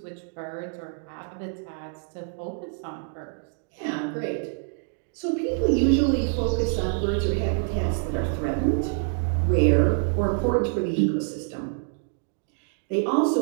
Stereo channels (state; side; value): silent; left; 61 dB below the other